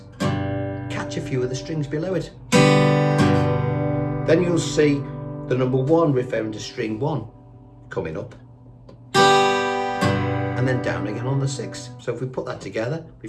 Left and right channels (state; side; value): identical; both; correlation 1.00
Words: catch a few of the strings below it. Then you'll see the number 1 referring to string 1 coming up, and then down again on the 6. So if we put that together,